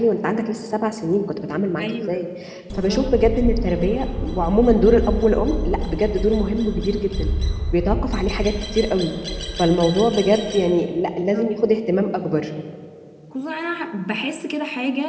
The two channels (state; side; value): identical; both; correlation 1.00